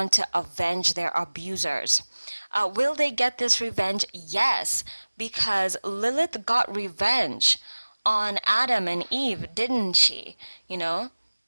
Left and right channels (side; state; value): both; inverted; correlation -1.00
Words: to avenge their abusers. Will they get this revenge? Yes, because Lilith got revenge on Adam and Eve, didn't she? Her